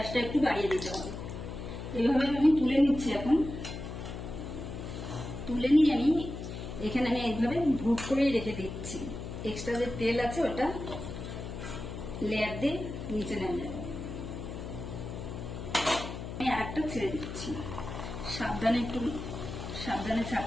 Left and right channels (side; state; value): left; noise; hum, 8 dB below the sound